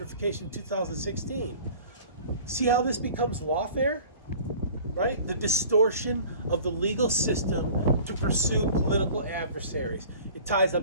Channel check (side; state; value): both; inverted; correlation -0.46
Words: in 2016. See how this becomes lawfare? Right? The distortion of the legal system to pursue political adversaries. It ties